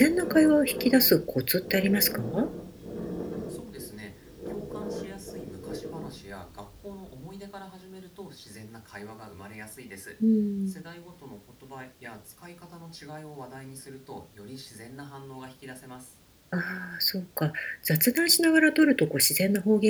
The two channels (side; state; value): both; identical; correlation 1.00